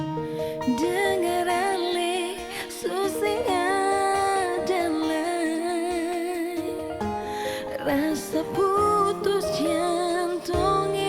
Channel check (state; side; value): identical; both; correlation 1.00